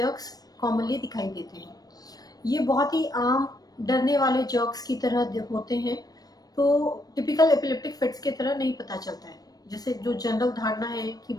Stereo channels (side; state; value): right; late; 0.19 ms